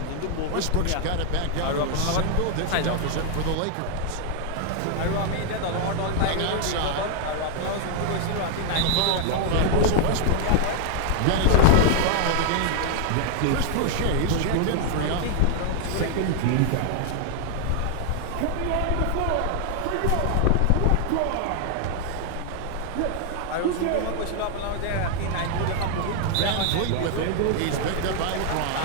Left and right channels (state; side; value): different; both; correlation 0.00